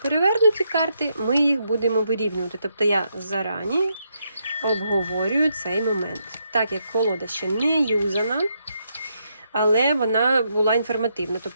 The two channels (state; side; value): inverted; both; correlation -0.79